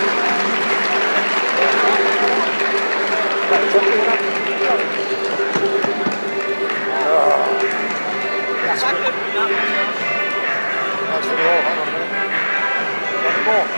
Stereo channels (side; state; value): both; inverted; correlation -1.00